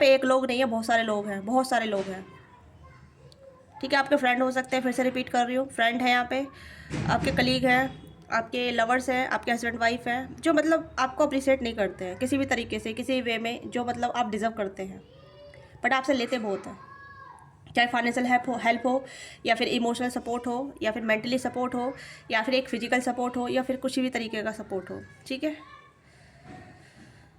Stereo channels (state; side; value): identical; both; correlation 1.00